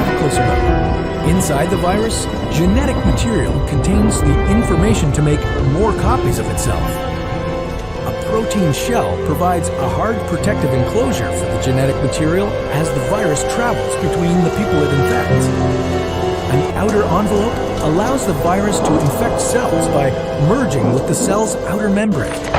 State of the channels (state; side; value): identical; both; correlation 1.00